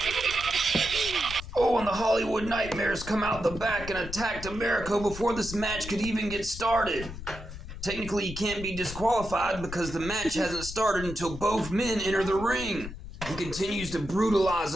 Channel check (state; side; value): noise; left; rumble, 11 dB below the sound